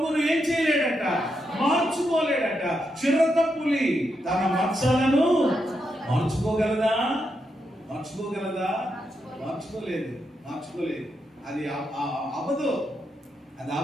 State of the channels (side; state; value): both; normal; correlation 0.83